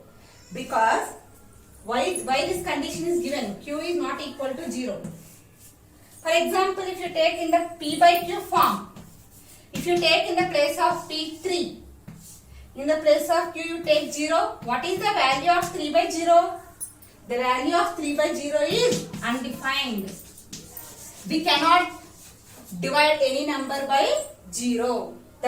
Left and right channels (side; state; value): both; identical; correlation 1.00